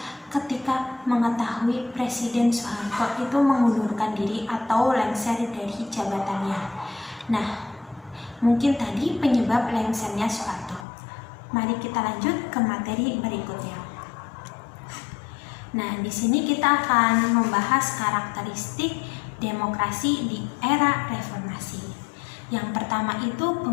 ketika mengetahui Presiden Soeharto itu mengundurkan diri atau lengser dari jabatannya. Nah, mungkin tadi penyebab lengsernya Soeharto. Mari kita lanjut ke materi berikutnya. Nah, di sini kita akan membahas karakteristik demokrasi di era reformasi. Yang pertama itu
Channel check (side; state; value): right; drops out; at 10.9 s